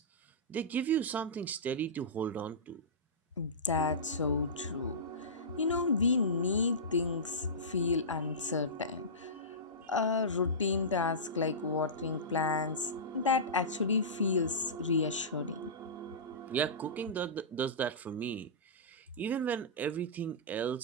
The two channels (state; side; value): normal; both; correlation -0.20